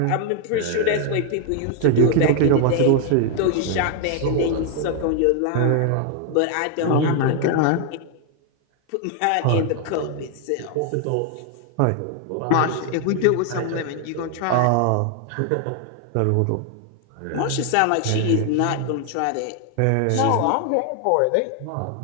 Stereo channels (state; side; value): different; both; correlation 0.00